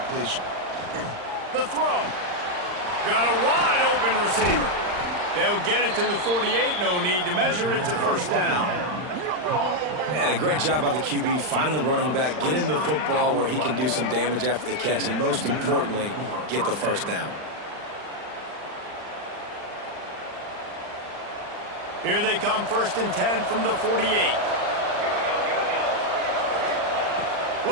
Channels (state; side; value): late; left; 39 ms